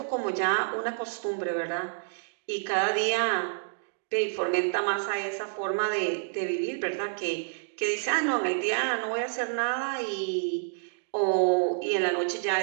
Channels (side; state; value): left; silent; digital silence